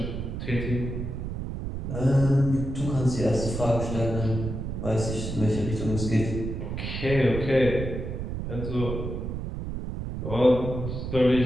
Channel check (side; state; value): right; noise; rumble, 5 dB below the sound